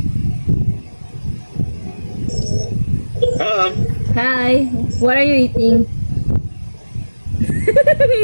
Hi. What are you eating?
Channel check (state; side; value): inverted; both; correlation -1.00